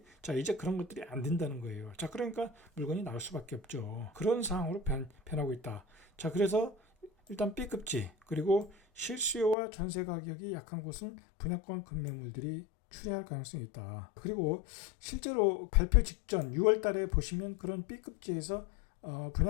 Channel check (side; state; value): right; drops out; at 9.6 s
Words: 자, 이제 그런 것들이 안 된다는 거예요. 자, 그러니까 물건이 나올 수밖에 없죠. 그런 상황으로 변하고 있다. 자, 그래서 일단 B급지, 그리고 실수요와 전세 가격이 약한 곳은 분양권 급매물들이 출회할 가능성이 있다. 그리고 실제로 발표 직전 6월 달에 보시면 그런 B급지에서